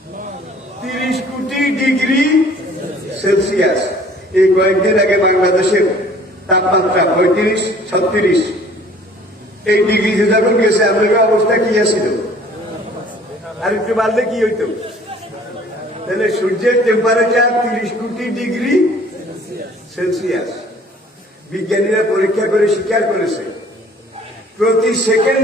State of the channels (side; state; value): both; normal; correlation 0.53